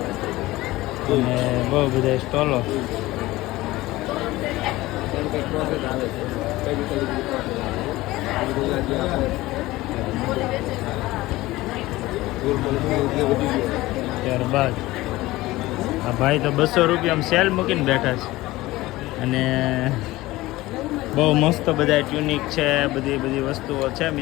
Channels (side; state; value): right; quieter; 18.5 dB